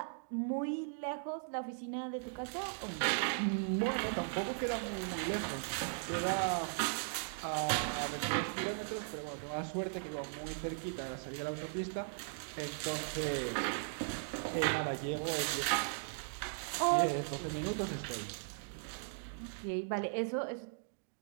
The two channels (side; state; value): left; silent; digital silence